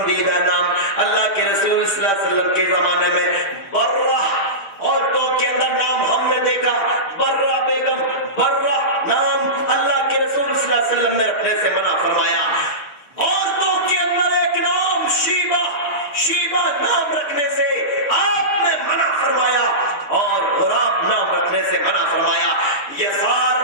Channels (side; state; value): right; late; 6.7 ms